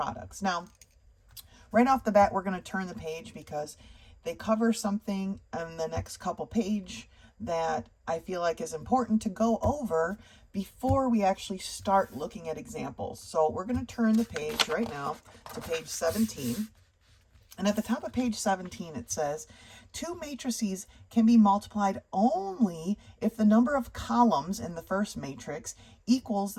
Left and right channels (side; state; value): both; identical; correlation 1.00